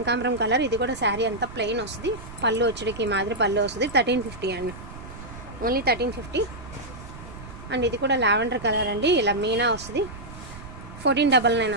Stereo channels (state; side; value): noise; right; rumble, 14 dB below the sound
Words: కలర్. ఇది కూడా శారీ అంతా ప్లెయిన్ వస్తుంది, పళ్ళు వచ్చేటికి మాదిరి పళ్ళు వస్తుంది. 1350 అండి, ఓన్లీ 1350. అండ్ ఇది కూడా లావెండర్ కలర్ అండి, ఇలా మీనా వస్తుంది. 1499